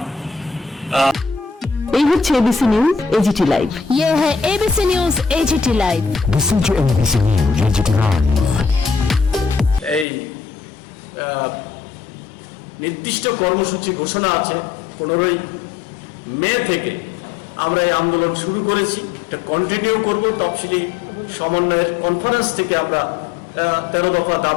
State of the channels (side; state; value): right; drops out; at 10.1 s